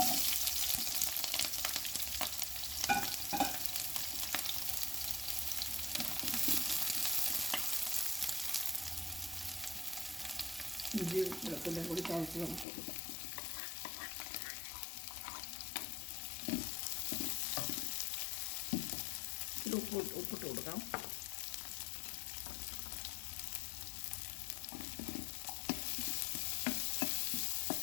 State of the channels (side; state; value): right; drops out; at 12.7 s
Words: ഇഞ്ചി വെളുത്തുള്ളിയും കൂടി ചതച്ച് നമുക്ക് കൊടുക്കാം. ഇത് ഉപ്പിട്ട് കൊടുക്കാം.